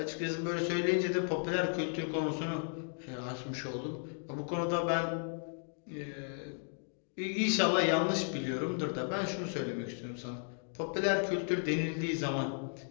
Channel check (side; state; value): right; silent; 55 dB below the other